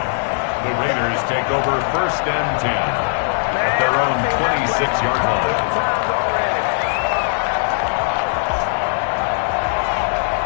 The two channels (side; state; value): right; silent; digital silence